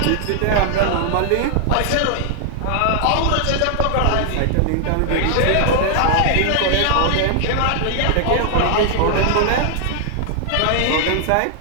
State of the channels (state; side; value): different; both; correlation 0.00